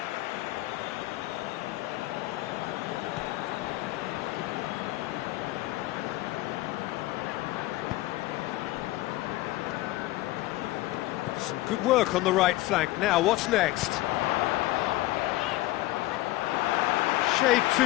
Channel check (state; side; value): quieter; right; 17.8 dB